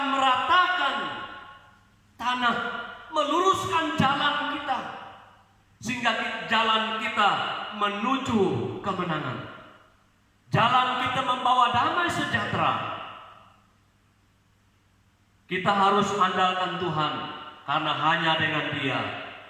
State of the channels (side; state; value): both; identical; correlation 1.00